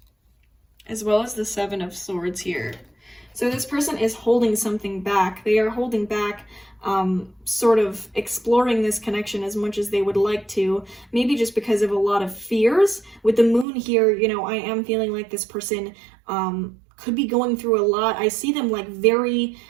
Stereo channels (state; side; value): drops out; left; at 13.7 s